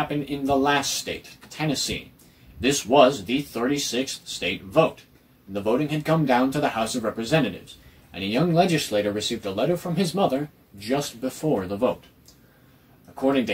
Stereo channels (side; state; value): both; identical; correlation 1.00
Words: in the last state, Tennessee. This was the 36th state vote. The voting had come down to the House of Representatives, and a young legislator received a letter from his mother just before the vote. According